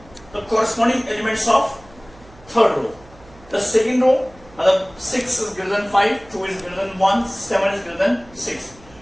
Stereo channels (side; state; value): right; noise; hum, 25 dB below the sound